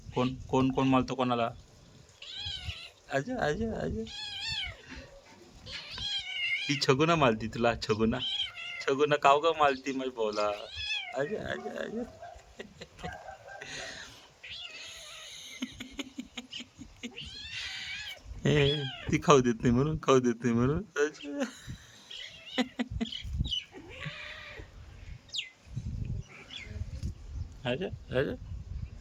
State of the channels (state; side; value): identical; both; correlation 1.00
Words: कोण कोण कोण मालतो कोणाला? अज अज अज ही छगुना मालती तुला छगुना छगुना काव का मालती माझी बोला अज अज अज हे ती खाऊ देत नाही म्हणून खाऊ देत नाही म्हणून अज अज